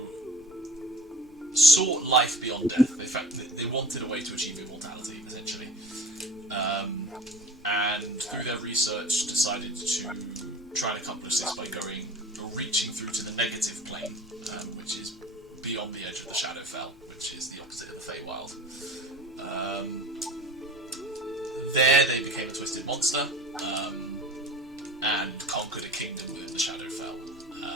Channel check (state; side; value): normal; both; correlation 0.39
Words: sought life beyond death. They wanted a way to achieve immortality, essentially. And through their research decided to try and accomplish this by reaching through to the negative plane, which is beyond the edge of the Shadowfell, which is the opposite of the Feywild. There they became a twisted monster, and conquered a kingdom within the Shadowfell.